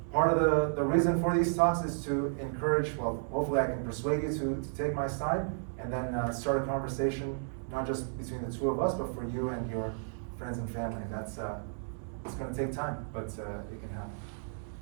Part of the reason for these talks is to encourage, well, hopefully I can persuade you to take my side, and then start a conversation, not just between the two of us, but for you and your friends and family. That's it's going to take time, but it can happen.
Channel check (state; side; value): silent; left; digital silence